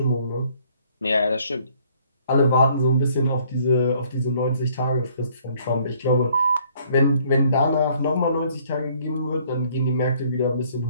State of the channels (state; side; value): inverted; both; correlation -0.62